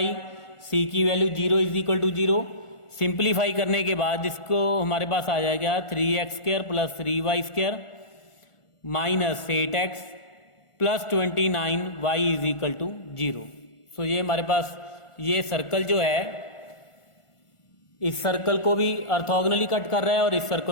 सी की value 0 is equal to 0। Simplify करने के बाद इसको हमारे पास आ जाएगा 3x² plus 3y² minus 8x plus 29y is equal to 0। So ये हमारे पास ये सर्कल जो है इस सर्कल को भी ऑर्थोगोनली कट कर रहा है और इस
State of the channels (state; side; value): late; right; 1.4 ms